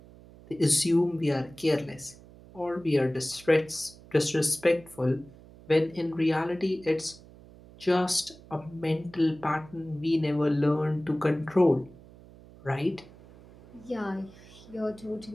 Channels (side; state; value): right; noise; hum, 21 dB below the sound